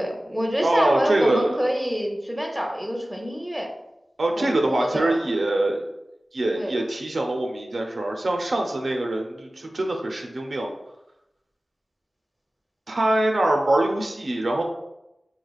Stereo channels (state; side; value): normal; both; correlation 0.96